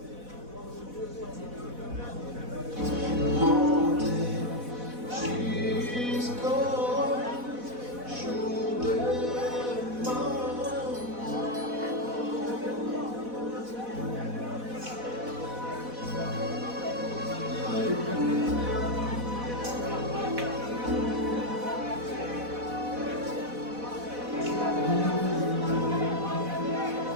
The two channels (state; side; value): late; left; 4.1 ms